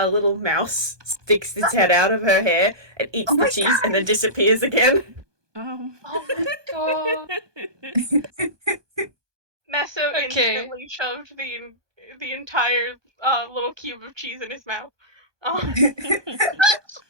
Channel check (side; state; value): left; late; 1.2 ms